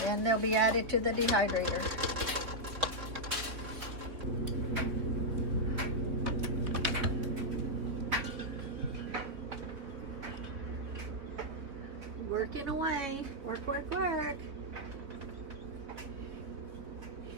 And they'll be added to the dehydrator. Working away. Work.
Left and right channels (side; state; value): left; late; 3.8 ms